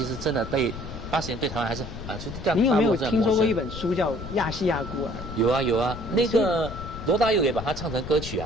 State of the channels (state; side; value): noise; left; rumble, 10 dB below the sound